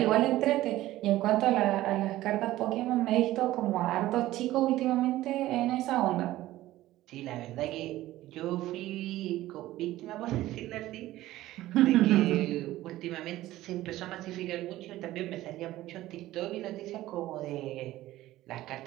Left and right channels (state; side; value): quieter; left; 15.7 dB